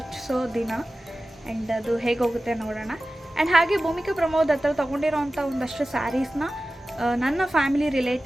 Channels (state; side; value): normal; both; correlation 0.95